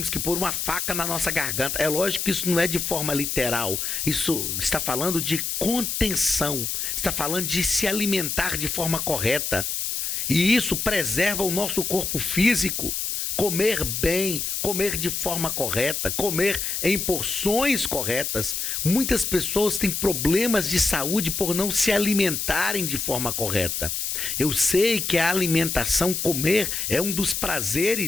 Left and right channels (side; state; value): left; noise; hiss, 2 dB below the sound